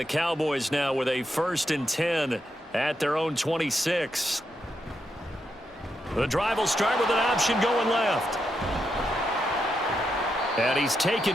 Cowboys now with a 1st and 10 at their own 26. The drive will start with an option going left. And he's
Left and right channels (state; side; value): normal; both; correlation 0.83